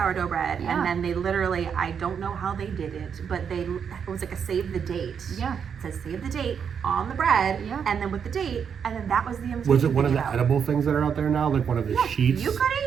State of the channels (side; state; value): left; quieter; 7.2 dB